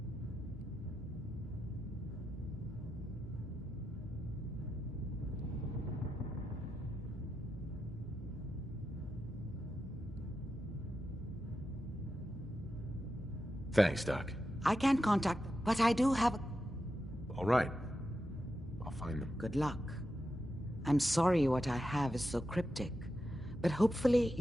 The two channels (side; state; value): both; normal; correlation 0.88